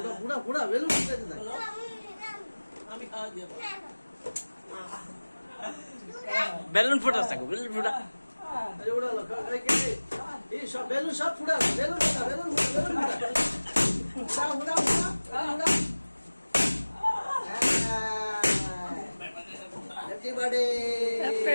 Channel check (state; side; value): inverted; both; correlation -1.00